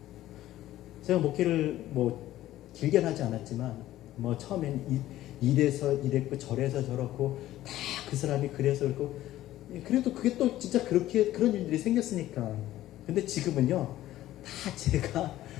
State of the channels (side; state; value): right; quieter; 14.3 dB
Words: 제가 목회를 길게 하지 않았지만 처음엔 이래서 이랬고 저래서 저렇고 다 그 사람이 그래서 그렇고 그래도 그게 또 진짜 그렇게 그런 일들이 생겼으니까. 근데 지금은요 다